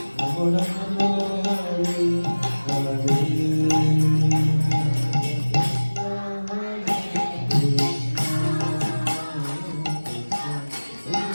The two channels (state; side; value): inverted; both; correlation -1.00